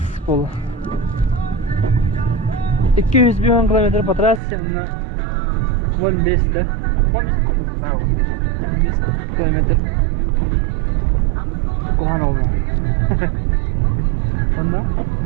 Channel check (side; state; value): left; drops out; at 4.4 s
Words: болу. 200 бион километр по трассе, 15 да. 15 kilometre Kohan oldu. Onda